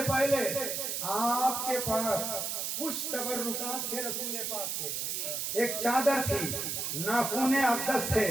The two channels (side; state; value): right; noise; hiss, 2 dB below the sound